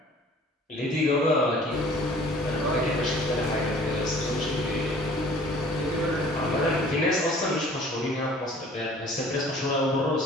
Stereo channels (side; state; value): both; normal; correlation 0.50